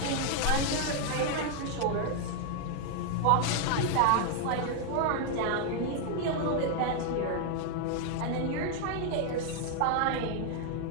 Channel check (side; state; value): both; different; correlation 0.00